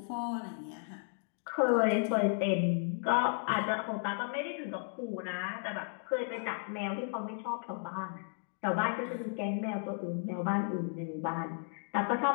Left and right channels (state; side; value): silent; right; 55 dB below the other